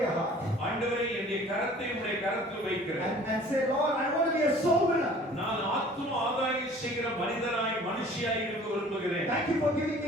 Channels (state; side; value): normal; both; correlation 0.49